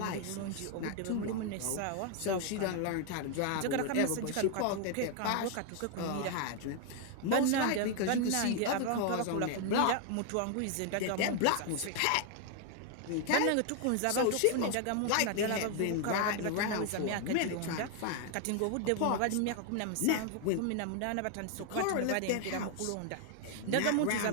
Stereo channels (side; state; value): both; different; correlation 0.00